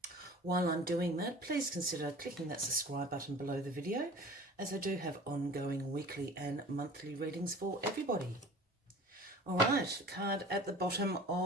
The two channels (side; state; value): both; normal; correlation 0.42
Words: While I'm doing that, please consider clicking that subscribe button below the video, as I do have ongoing weekly and monthly readings for everybody. All right, card at the bottom